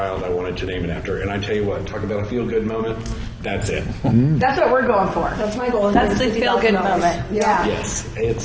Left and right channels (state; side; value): identical; both; correlation 1.00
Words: I wanted to name it after. And I tell you what, talk about a feel-good moment. That's it. That's what we're going for. That's my goal. That's the feel-good moment. Yeah. Yes,